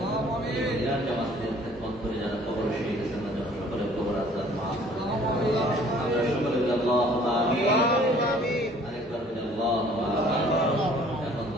জামাতের খেদমত করে যারা কবর শিখে গেছেন তাদের সকলের কবর আসার মাফ করে। আমরা সকলে আল্লাহুম্মা আমিন। আরেকবার বলি আল্লাহুম্মা আমিন। এখন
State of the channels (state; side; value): normal; both; correlation 0.55